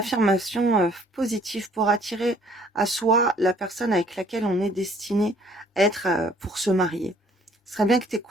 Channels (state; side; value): normal; both; correlation 0.59